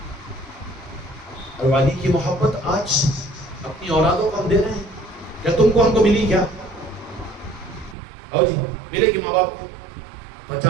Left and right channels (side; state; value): left; drops out; at 8.0 s